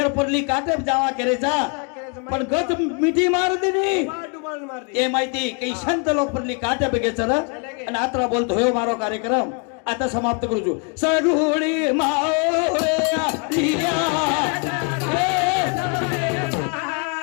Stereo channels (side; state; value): right; quieter; 35.9 dB